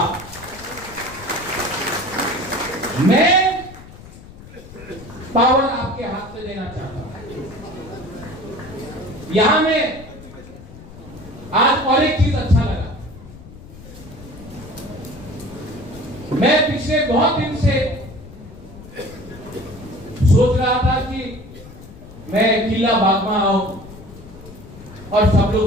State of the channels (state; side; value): noise; left; rumble, 17 dB below the sound